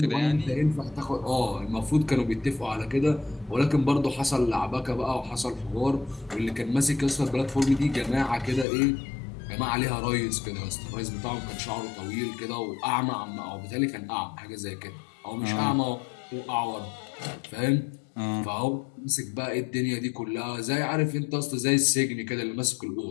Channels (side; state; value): right; drops out; at 8.7 s